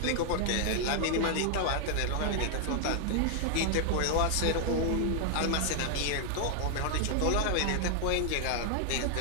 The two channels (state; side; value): different; both; correlation 0.00